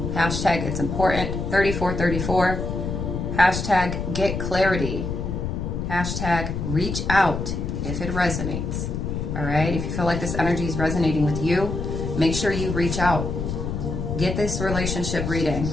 Hashtag it's important. 3434. Hashtag get clarity. Hashtag reach out if it resonates. All right? If you feel like this energy is resonating with you, make sure you reach out. Get this relationship reading.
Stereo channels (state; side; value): noise; left; rumble, 3 dB below the sound